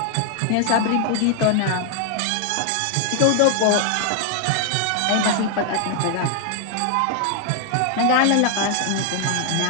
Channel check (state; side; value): different; both; correlation 0.00